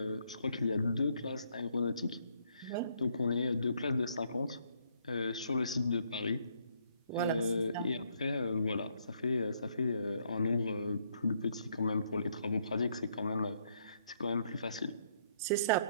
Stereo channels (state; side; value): inverted; both; correlation -0.70